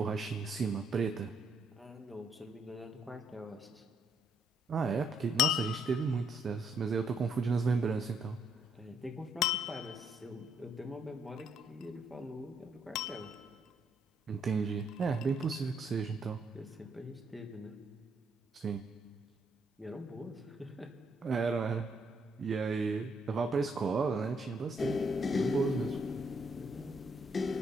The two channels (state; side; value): normal; both; correlation 0.73